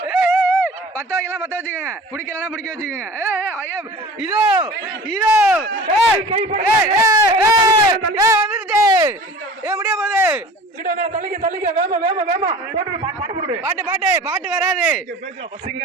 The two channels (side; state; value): both; normal; correlation 0.41